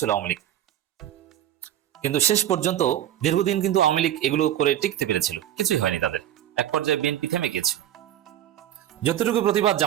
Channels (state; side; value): quieter; left; 11.8 dB